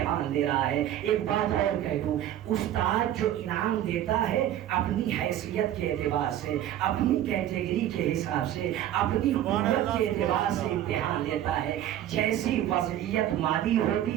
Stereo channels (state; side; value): quieter; left; 12.0 dB